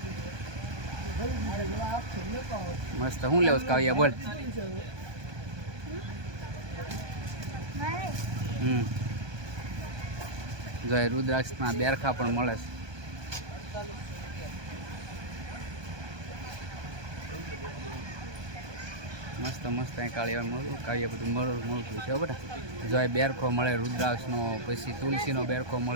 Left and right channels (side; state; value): left; late; 1.2 ms